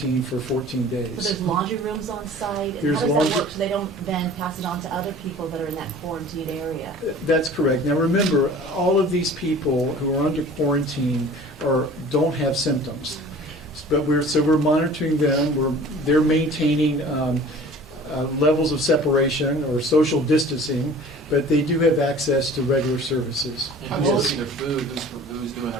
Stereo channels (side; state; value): both; normal; correlation 0.45